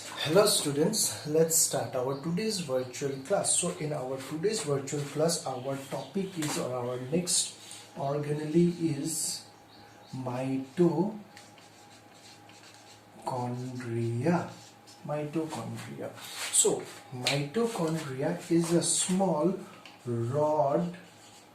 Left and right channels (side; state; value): both; identical; correlation 1.00